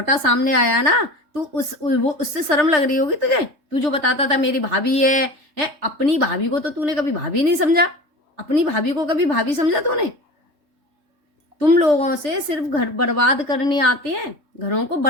सामने आया ना, तू वो उससे शर्म लग रही होगी तुझे। तू जो बताता था मेरी भाभी है, अपनी भाभी को तो तूने कभी भाभी नहीं समझा। अपनी भाभी को कभी भाभी समझा तूने? तुम लोगों से सिर्फ घर बर्बाद करने आते हैं, घरों को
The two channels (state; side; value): late; left; 3.3 ms